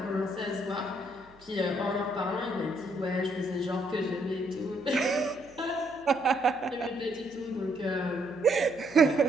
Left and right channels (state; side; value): noise; right; hum, 27 dB below the sound